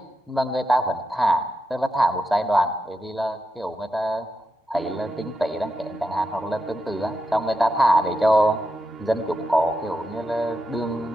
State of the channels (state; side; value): normal; both; correlation 0.86